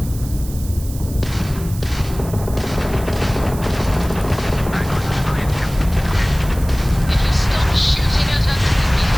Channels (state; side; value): noise; right; hiss, 16 dB below the sound